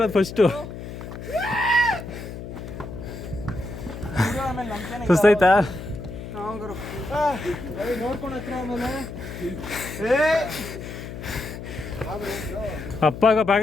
ಫಸ್ಟು. ಸುಸ್ತಾಯ್ತಾ? ನೋಡ್ಕೊಂಡು ಹತ್ರ ಆಮೇಲೆ ಅಪ್ಪಾಗ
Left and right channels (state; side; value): noise; left; hum, 10 dB below the sound